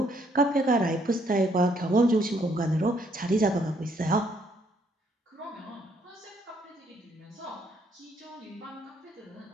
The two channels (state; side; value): normal; both; correlation 0.69